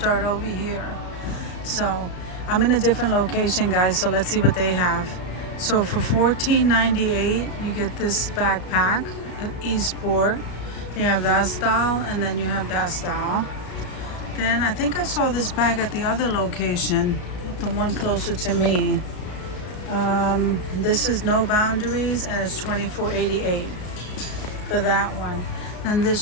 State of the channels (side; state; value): right; late; 33 ms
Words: over here. So I'm in a different location, guys, so let's see what they have. So for $14.98 you get this backpack, Esport. You have that style and then you have that style. Then I think I saw this bag at the other location, the one closer to me. This is No Boundaries and it's $24.88 for that one. Then